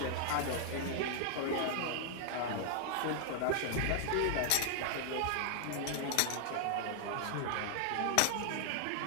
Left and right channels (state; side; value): different; both; correlation -0.01